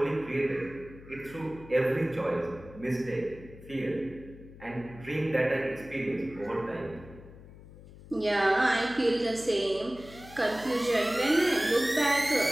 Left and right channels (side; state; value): left; noise; hum, 18 dB below the sound